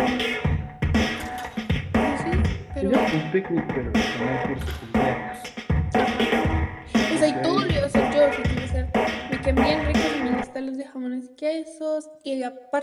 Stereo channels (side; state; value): both; identical; correlation 1.00